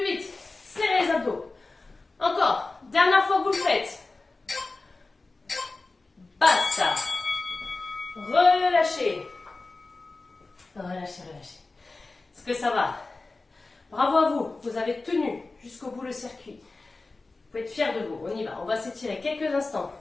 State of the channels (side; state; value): right; quieter; 3.5 dB